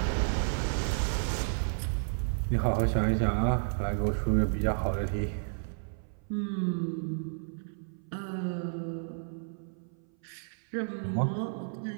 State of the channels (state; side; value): silent; left; 57 dB below the other